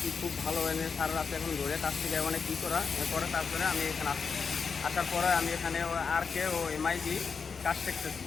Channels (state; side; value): quieter; right; 5.5 dB